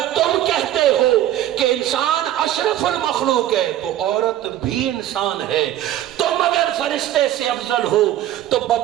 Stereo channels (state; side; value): quieter; left; 12.7 dB